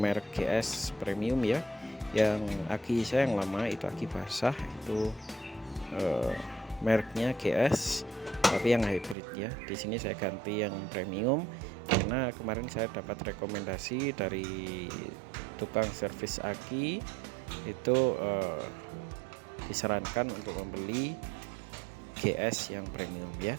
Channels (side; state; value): left; drops out; at 9.2 s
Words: merek GS Premium ya. Yang aki saya yang lama itu aki basah itu eh, mereknya GS, tapi yang hybrid ya. Di sini saya ganti yang premium karena kemarin saya dapat rekomendasi dari tukang servis aki itu disarankan untuk membeli GS yang premium